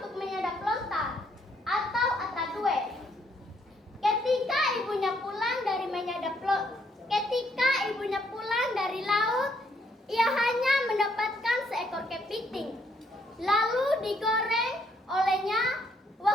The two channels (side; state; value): both; normal; correlation 0.71